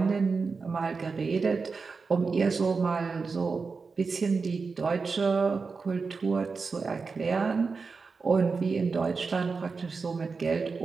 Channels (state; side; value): quieter; left; 4.7 dB